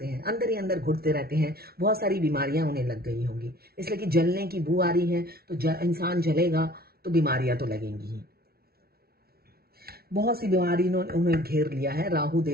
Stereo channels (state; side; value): late; left; 0.44 ms